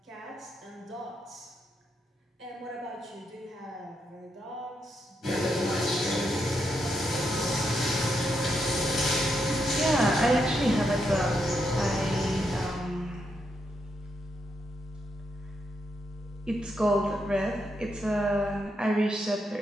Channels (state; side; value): normal; both; correlation 0.81